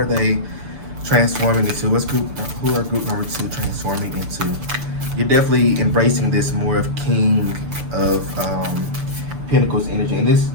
they transforming into? Who are group number 2 transforming into? You're definitely embracing this more of King of Pentacles energy, and this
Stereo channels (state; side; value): late; left; 6.8 ms